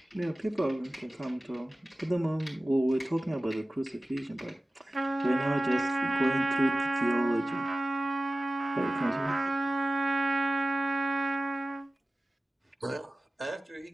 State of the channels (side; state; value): both; normal; correlation 0.97